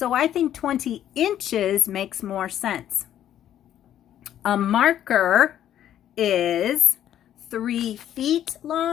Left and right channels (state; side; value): quieter; right; 11.1 dB